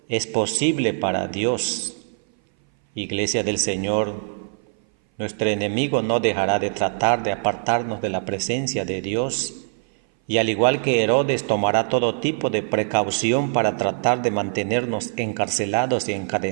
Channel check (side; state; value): left; silent; 60 dB below the other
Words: es posible para Dios. Iglesia del Señor, nuestro enemigo no dejará de tratar de apartarnos de la presencia de Dios. Y al igual que Herodes, tomará todo tipo de precaución para tratar de mantenernos encarcelados y